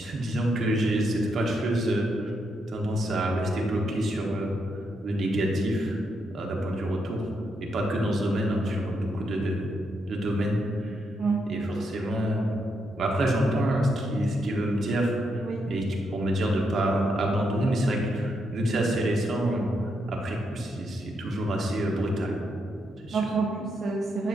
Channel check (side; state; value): both; normal; correlation 0.80